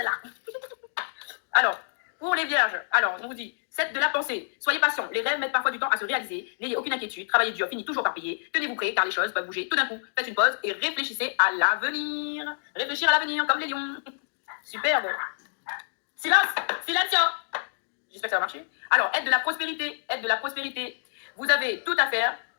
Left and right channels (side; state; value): right; silent; digital silence